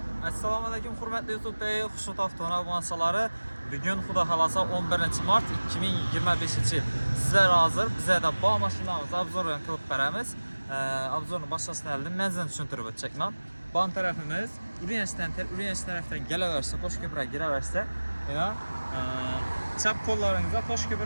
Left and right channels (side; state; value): both; inverted; correlation -1.00